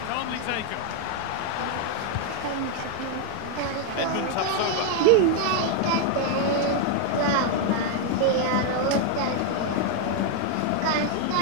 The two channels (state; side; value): different; both; correlation 0.00